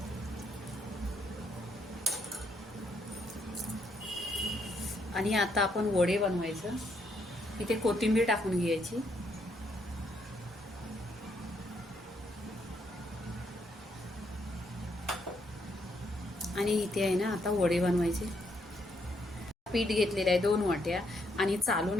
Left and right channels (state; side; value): normal; both; correlation 0.74